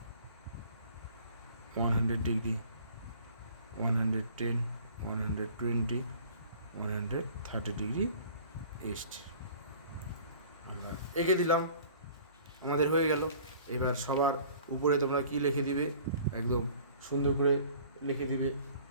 100 degree, 110, 120, 130 degree east আমরা এঁকে দিলাম, আমাদের হয়ে গেল। এবার সবার উপরে তোমরা কি লিখে দিবে, একদম সুন্দর করে লিখে দিবে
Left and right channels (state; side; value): inverted; both; correlation -0.49